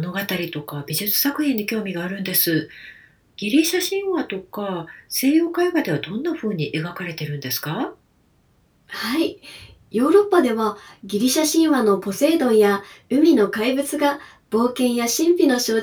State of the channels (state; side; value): identical; both; correlation 1.00